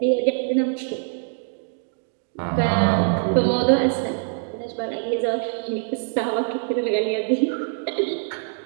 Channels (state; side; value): silent; left; digital silence